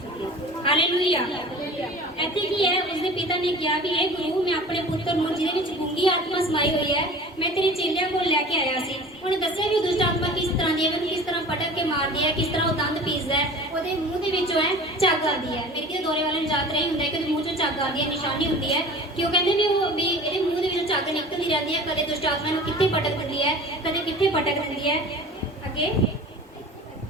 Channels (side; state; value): both; normal; correlation 0.40